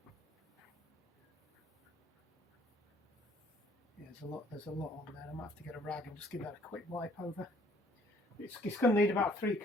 Yeah, there's a lot on there. I might have to get a rag and just give that a quick wipe over. It's going to need about 3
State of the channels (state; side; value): normal; both; correlation 0.61